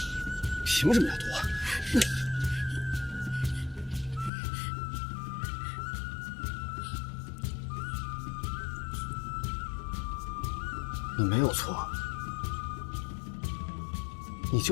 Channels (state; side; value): drops out; right; at 4.3 s